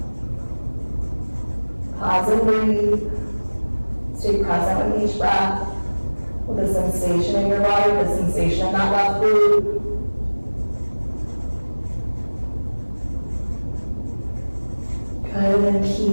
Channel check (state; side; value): inverted; both; correlation -1.00